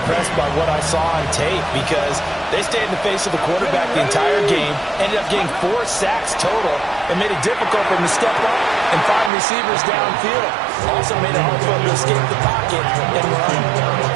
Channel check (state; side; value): drops out; left; at 9.3 s